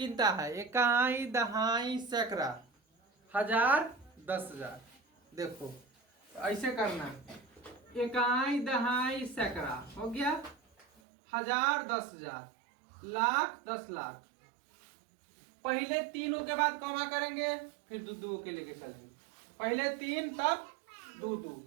है? इकाई, दहाई, सैकड़ा, 1000, 10000। देखो, तो ऐसे करना। इकाई, दहाई, सैकड़ा हो गया, 1000, 10000, लाख, 10 लाख। पहले तीनों के बाद कॉमा करेंगे, फिर दो के लेके चलेंगे। पहले 3 तब 2,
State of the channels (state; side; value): drops out; left; at 10.9 s